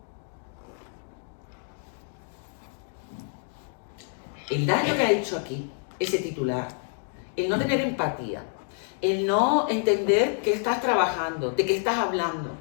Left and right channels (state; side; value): silent; right; 60 dB below the other